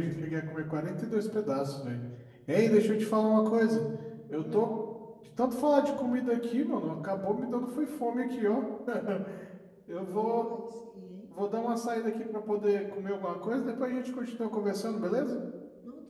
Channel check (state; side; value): identical; both; correlation 1.00